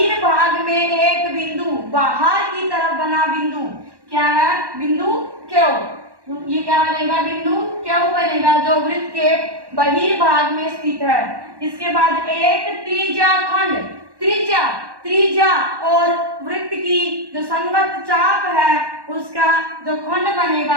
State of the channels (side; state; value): left; late; 1.1 ms